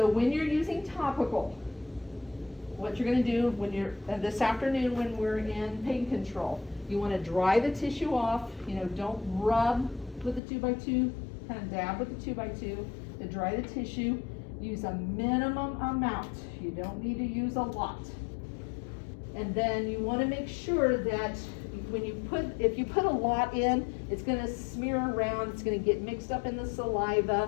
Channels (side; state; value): right; drops out; at 10.4 s